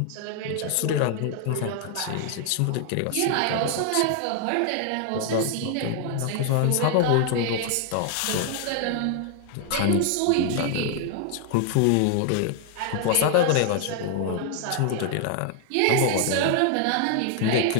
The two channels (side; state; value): both; different; correlation 0.00